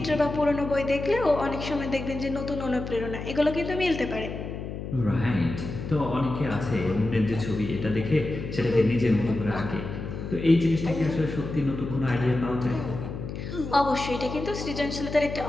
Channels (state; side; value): noise; left; hum, 7 dB below the sound